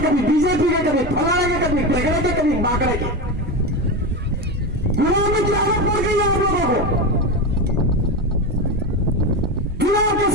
कभी बीजेपी के, कभी फलाने के, कभी टेगड़े के, कभी बाकड़े के। गुलामी की आदत पड़ गई है आप लोगों को। चुनाव के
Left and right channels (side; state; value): both; normal; correlation 0.18